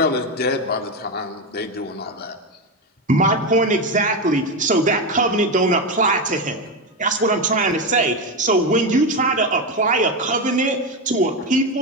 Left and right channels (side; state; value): both; normal; correlation 0.12